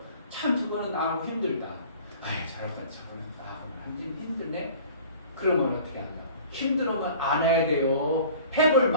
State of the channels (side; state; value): both; inverted; correlation -0.46